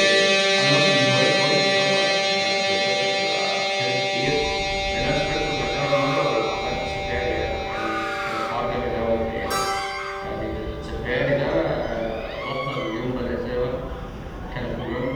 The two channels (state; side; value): identical; both; correlation 1.00